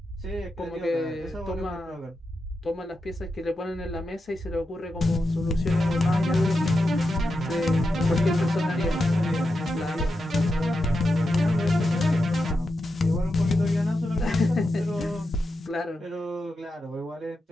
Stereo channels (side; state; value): both; normal; correlation 0.88